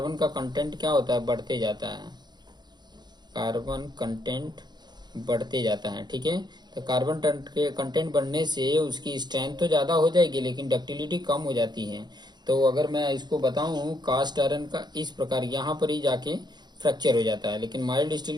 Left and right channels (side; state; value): left; late; 0.21 ms